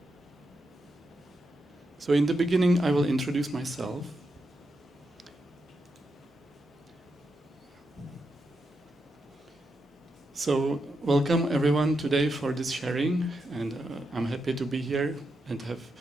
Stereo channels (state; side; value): normal; both; correlation 0.85